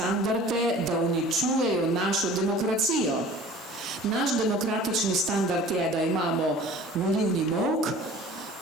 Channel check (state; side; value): normal; both; correlation 0.45